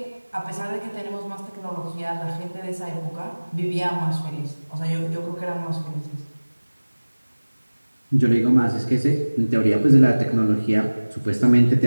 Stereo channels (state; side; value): inverted; both; correlation -1.00